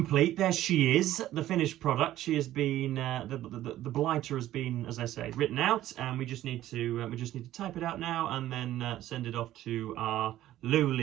There she is, the finished product. She has been the blighter has been, as I say, written out, and we just need to type it out now and then send it off to our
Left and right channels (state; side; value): quieter; left; 13.7 dB